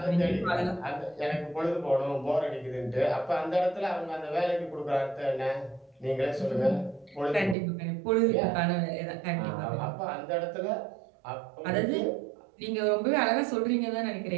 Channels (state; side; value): drops out; left; at 7.6 s